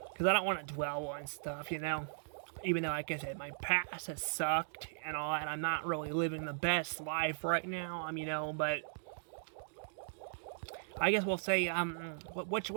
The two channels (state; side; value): silent; left; digital silence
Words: Because I don't want to dwell on stuff, Even though, like I said, my past has sucked and all that. I'm not really living the best life right now, but... I guess we'll say, what's